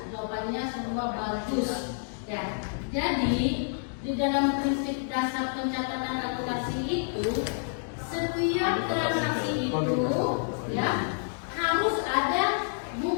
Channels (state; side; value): silent; right; digital silence